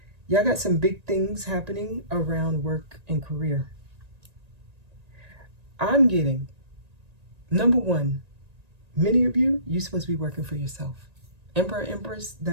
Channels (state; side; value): late; left; 1.9 ms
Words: Y'all got some big things happening around work and career. I'm getting, number one, many of you, you're supposed to be working for yourself. Emperor, Empress,